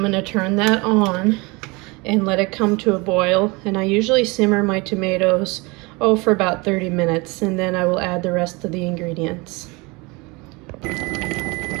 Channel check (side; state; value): left; quieter; 26.3 dB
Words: to turn that on and let it come to a boil. And I usually simmer my tomatoes for about 30 minutes, and then I will add the rest of the ingredients. Alright,